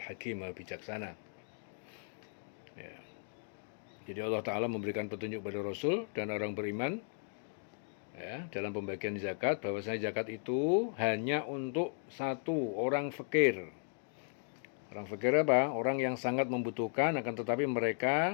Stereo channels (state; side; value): silent; right; 54 dB below the other